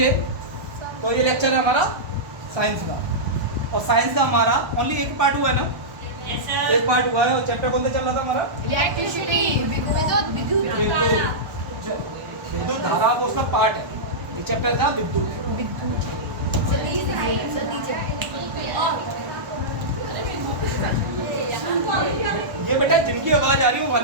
तो ये लेक्चर है हमारा साइंस का, और साइंस का हमारा ओनली एक पार्ट हुआ है ना? Yes, sir. एक पार्ट हुआ है, और चैप्टर कौन सा चल रहा था हमारा? इलेक्ट्रिसिटी, विद्युत धारा वो उसका पार्ट है। ये चैप्टर था विद्युत। ये बेटा जिनकी आवाज आ रही है वो बाहर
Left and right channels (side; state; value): left; late; 1.1 ms